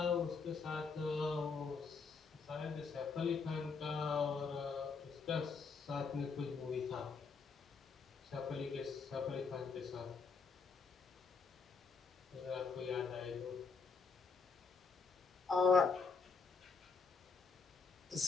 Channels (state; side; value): quieter; right; 4.9 dB